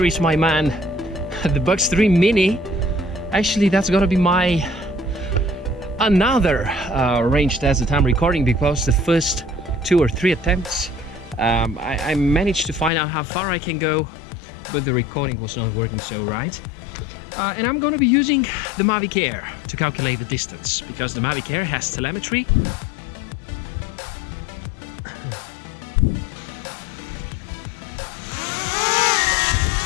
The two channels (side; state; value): right; drops out; at 12.9 s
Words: is my man, the Bugs 3 Mini. Actually, that's gonna be my another range test that I'm recording, because the first 2 or 3 attempts I managed to find out how far I can go, but the recording was not working so right. And I'm gonna be using the Mavic Air to calculate the distance, because the Mavic Air has telemetry.